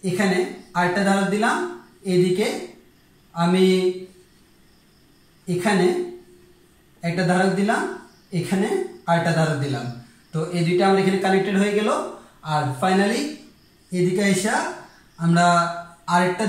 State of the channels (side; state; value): both; identical; correlation 1.00